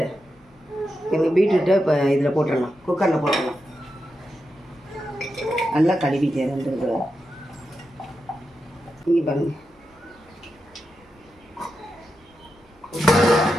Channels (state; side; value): normal; both; correlation 0.88